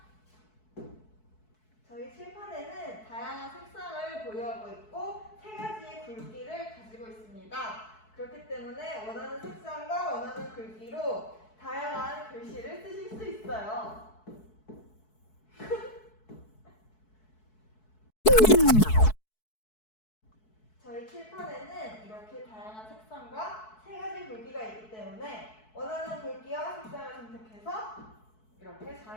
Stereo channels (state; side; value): late; right; 4.6 ms